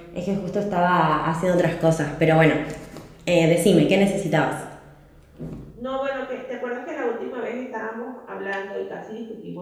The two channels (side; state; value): both; identical; correlation 1.00